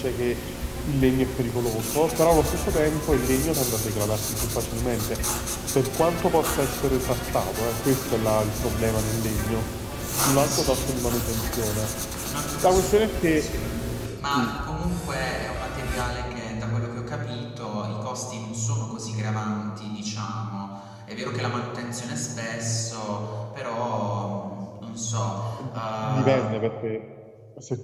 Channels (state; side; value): identical; both; correlation 1.00